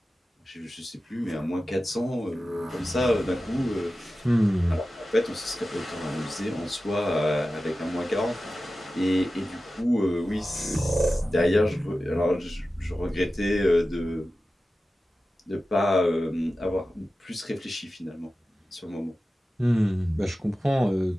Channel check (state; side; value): normal; both; correlation 0.94